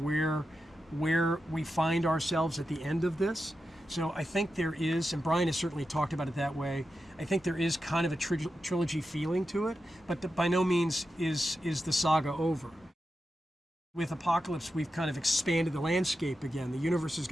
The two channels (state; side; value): normal; both; correlation 0.90